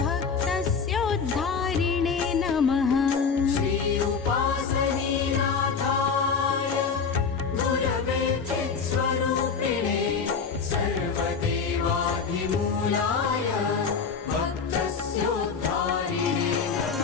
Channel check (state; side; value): quieter; right; 5.6 dB